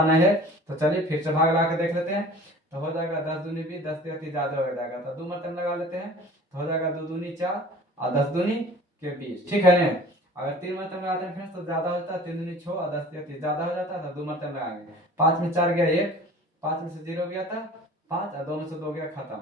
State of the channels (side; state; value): both; normal; correlation 0.44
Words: नहीं है। तो चलिए फिर से भाग लगा के देख लेते हैं, तो हो जाएगा 10 दूनी 20, 10 3 ज्यादा हो जाएगा, तो 2 मतलब लगा लेते हैं, तो हो जाएगा 2 दूनी 4 और 10 दूनी के 20। ठीक है ना, अगर 3 मरतबा लगाते हैं फ्रेंड्स तो ज्यादा होता है, 3 दूनी 6 और 10 या 30 ज्यादा हो जाता है, तो 2 मरतबा लगाएंगे। 5 में 4 गया 1, 5 में से 0 गया था 5 और 2 में से 2 गया, खत्म।